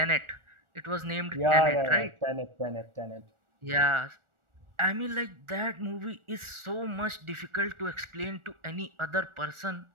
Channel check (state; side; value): late; left; 1.4 ms